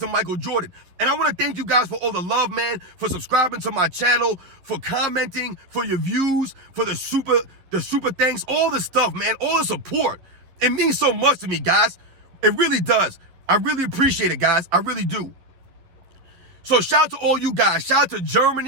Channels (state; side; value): late; left; 11 ms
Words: to Michael Jordan. And I want to thank you guys for all the love, man, for subscribing to my channel, for commenting, for your views, for the super thanks, all the stuff, man, all the support. It means so much to me, guys. It really does. I really appreciate it, guys. I really do. So shout out to all you guys. Shout out to